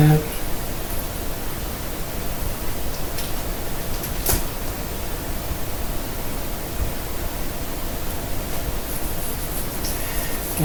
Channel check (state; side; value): identical; both; correlation 1.00